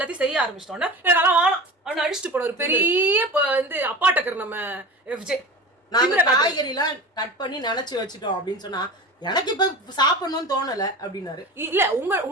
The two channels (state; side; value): normal; both; correlation 0.31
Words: செய்ய ஆரம்பிச்சிட்டோன்னா எனக்கு வேணாம் அவனை அடிச்சுட்டு போன ஒரு பெரிய வந்து அப்பாட்டக்கர் நம்ம FJ. நாங்க காய்கறி எல்லாம் கட் பண்ணி நினைச்சு வச்சுட்டோம் அப்படின்னு சொன்னா எனக்கு இப்ப சாப்பிடணும்னு தோணல அப்படின்னாரு. இல்ல